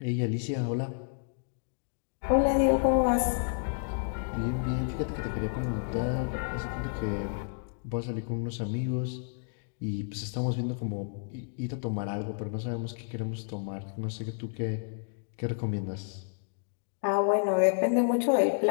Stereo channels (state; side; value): silent; right; digital silence